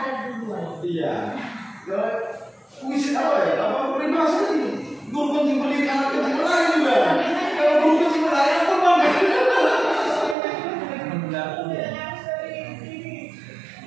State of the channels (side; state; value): left; drops out; at 10.4 s